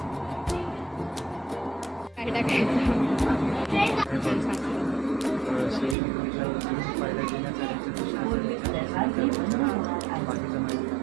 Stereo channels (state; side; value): drops out; left; at 6.0 s